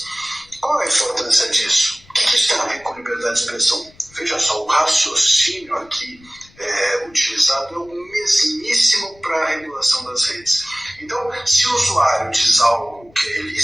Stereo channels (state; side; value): noise; left; rumble, 27 dB below the sound